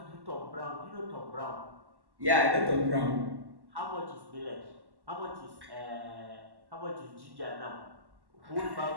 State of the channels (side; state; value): left; late; 1.1 ms